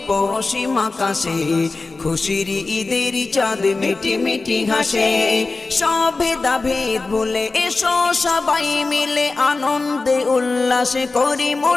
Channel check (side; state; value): right; quieter; 3.7 dB